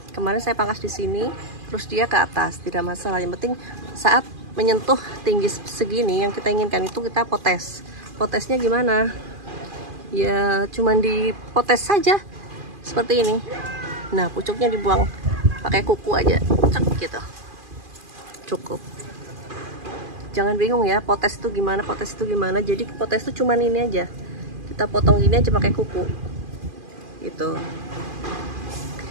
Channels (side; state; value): left; late; 2.4 ms